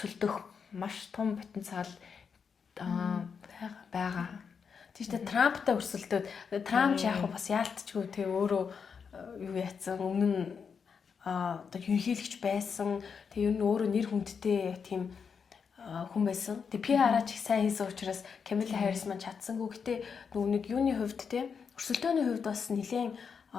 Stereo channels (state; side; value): quieter; right; 6.2 dB